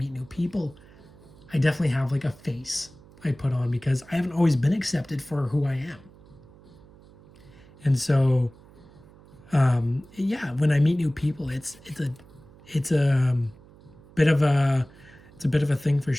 new people, I definitely have like a face I put on, because I haven't always been accepted for who I am. And so yeah, when I meet new people, it's a bit of a thing for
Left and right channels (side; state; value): right; noise; hum, 24 dB below the sound